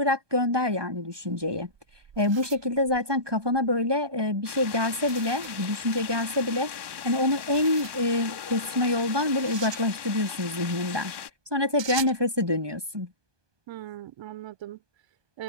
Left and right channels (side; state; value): left; late; 1.2 ms